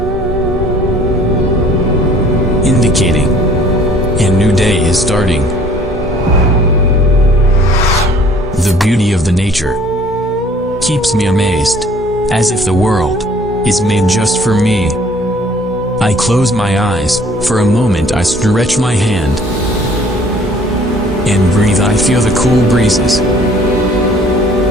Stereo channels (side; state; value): both; normal; correlation 0.55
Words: indicating a new day is starting. The beauty of the nature keeps me amazed, as if the world is made just for me. I close my eyes, for a moment I stretch my hand and breathe. I feel the cool breezes,